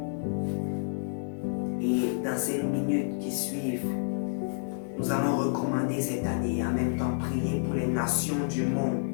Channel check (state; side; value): silent; right; 58 dB below the other